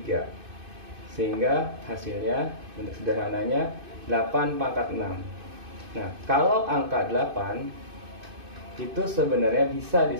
Sehingga hasilnya untuk sederhananya 8 pangkat 6. Nah, kalau angka 8 itu sebenarnya bisa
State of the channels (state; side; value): late; left; 2.5 ms